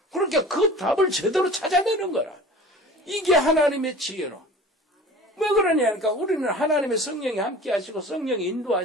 그러니까 그 답을 제대로 찾아내는 거라. 이게 하나님의 지혜로. 왜 그러냐니까 우리는 하나님의 성령이 함께 하시고 성령이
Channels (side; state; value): both; normal; correlation 0.41